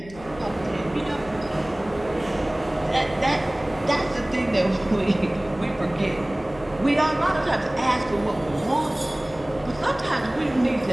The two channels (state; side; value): noise; left; hum, 19 dB below the sound